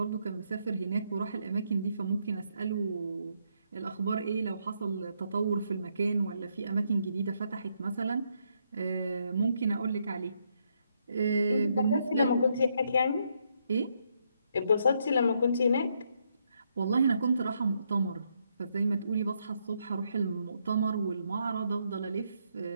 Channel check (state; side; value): inverted; both; correlation -0.76